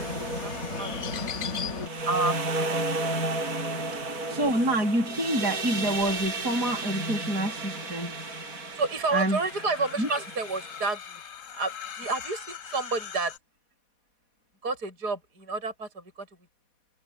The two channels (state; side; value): late; left; 4.1 ms